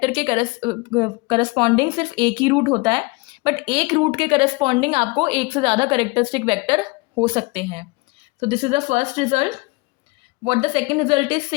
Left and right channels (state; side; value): quieter; right; 26.4 dB